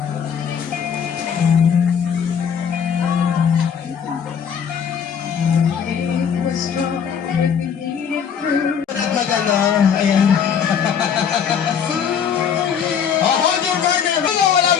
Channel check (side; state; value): right; quieter; 7.5 dB